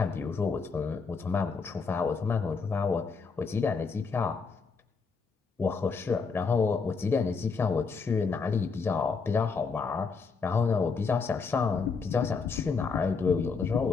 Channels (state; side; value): quieter; right; 5.0 dB